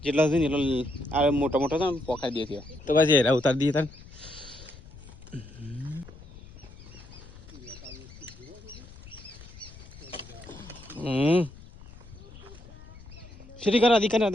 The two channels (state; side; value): noise; left; rumble, 18 dB below the sound